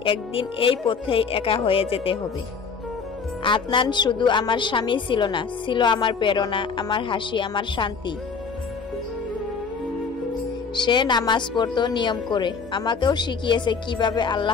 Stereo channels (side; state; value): right; quieter; 5.4 dB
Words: একদিন এই পথেই একা হয়ে যেতে হবে। আদনান শুধু আমার স্বামী ছিল না, ছিল আমার প্রেরণা, আমার হাসি, আমার শান্তি। সে নামাজ পড়তো নিয়ম করে, আমাকেও শিখিয়েছে কিভাবে